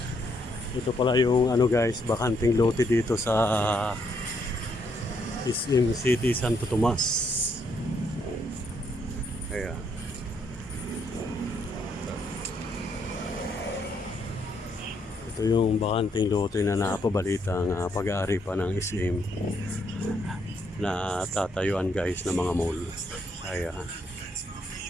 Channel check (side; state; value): both; normal; correlation 0.74